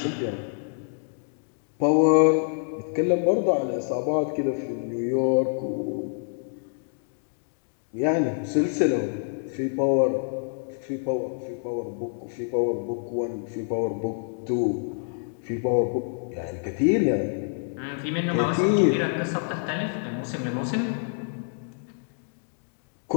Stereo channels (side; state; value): right; silent; digital silence